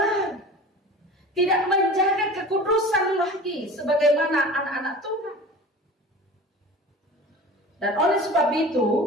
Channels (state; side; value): normal; both; correlation 0.37